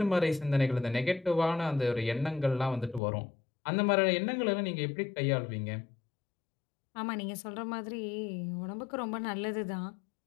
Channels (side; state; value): right; drops out; at 3.0 s